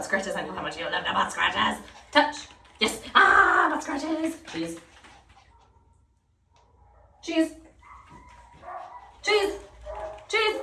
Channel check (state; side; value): identical; both; correlation 1.00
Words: scratches. I know how much you love the butt scratches. Touch. Yes. Ah, butt scratches. Cheese. Cheese. Cheese. Cheese.